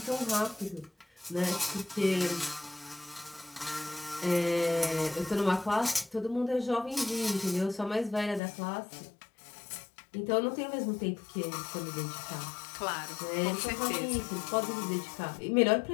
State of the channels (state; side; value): drops out; right; at 8.4 s